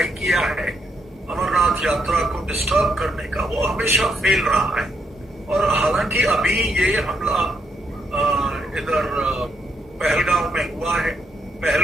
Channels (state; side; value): normal; both; correlation 0.78